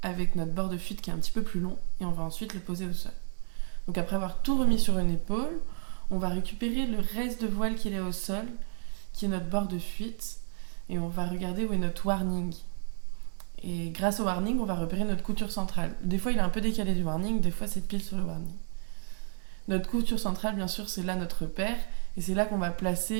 avec notre bord de fuite qui est un petit peu plus long et on va ensuite le poser au sol. Donc après avoir tout remis sur une épaule, on va récupérer le reste de voile qu'il est au sol, qui est notre bord de fuite, et on va regarder où est notre warning. Et grâce au warning, on va repérer notre couture centrale. Des fois, il est un peu décalé du warning, des fois, c'est pile sur le warning. Notre couture centrale, bien sûr, c'est là notre repère, et c'est là qu'on va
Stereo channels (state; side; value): silent; left; digital silence